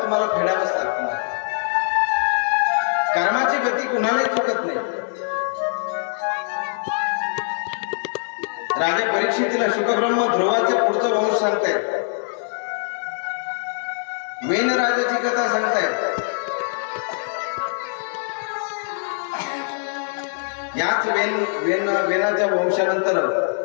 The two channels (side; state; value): right; silent; 64 dB below the other